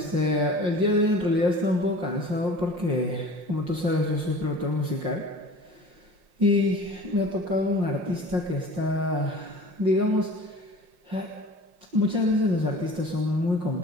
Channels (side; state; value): left; late; 5.6 ms